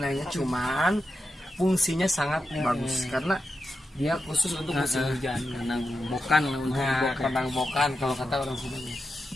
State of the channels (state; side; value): normal; both; correlation 0.88